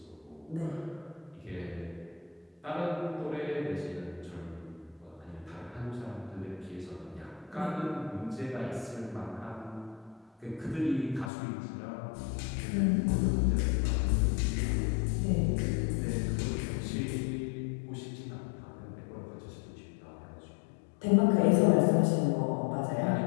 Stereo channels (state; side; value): drops out; right; at 11.3 s